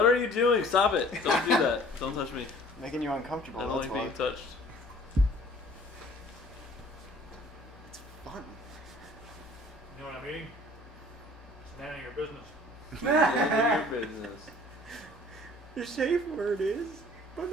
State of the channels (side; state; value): both; normal; correlation 0.52